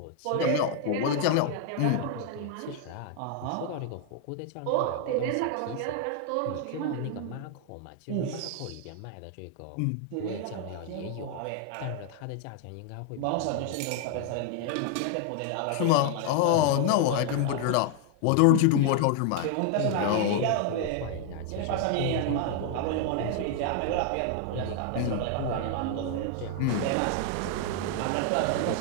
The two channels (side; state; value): both; different; correlation 0.00